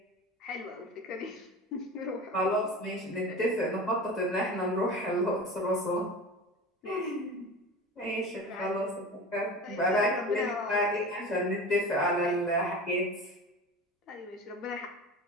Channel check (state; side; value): normal; both; correlation 0.33